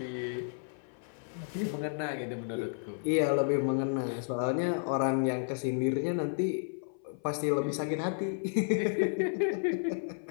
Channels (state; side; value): silent; right; 56 dB below the other